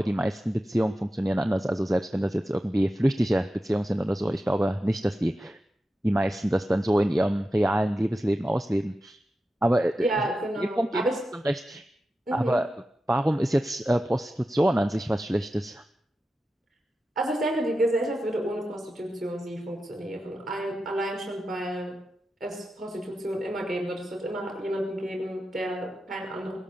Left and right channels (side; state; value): both; normal; correlation 0.91